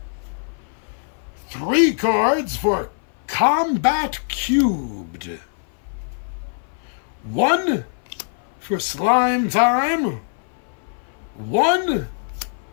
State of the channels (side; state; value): right; silent; 58 dB below the other